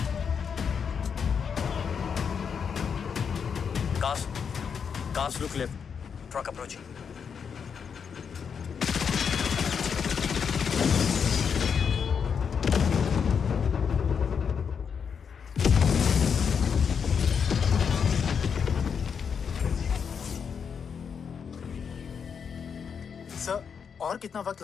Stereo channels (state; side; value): quieter; right; 6.7 dB